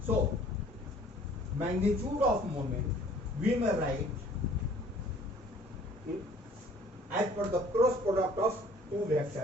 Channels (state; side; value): normal; both; correlation 0.54